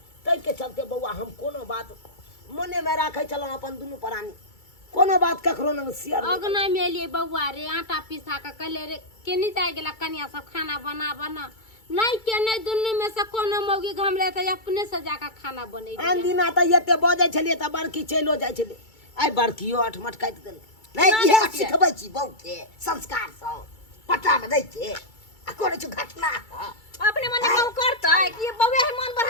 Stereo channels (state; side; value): late; right; 2.3 ms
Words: ताहि के चलते बउआ हम कोनो बात मने में राखे छलहुँ अपन दुनू प्राणी, कोनो बात ककरो न शेयर नहीं। अगना में एलिए बउआ रे आटा पिसा के कहले रे केनी जाय गेला कनिया सब खाना बना नहीं के नहीं दुनू में से कोनो मौगी घमले त अपने से जाके खाना बनै दिया। आन दिना त एते बजै छलिए त बड़की चलो जाइ छले, आइ बड़कियो अठमट काटि देलकै। नहीं इहे सिखबै छी बहु के संस्कार सब पता में दै छै आ करे छ घटना। अपने मने कहू करता है कि ये बउआ है मन